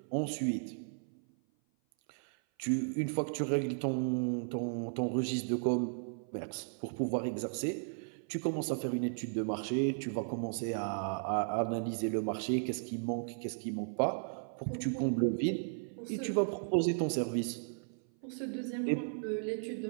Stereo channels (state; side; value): silent; left; 54 dB below the other